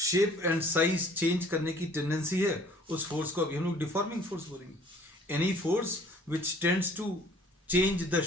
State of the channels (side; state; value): both; normal; correlation 0.54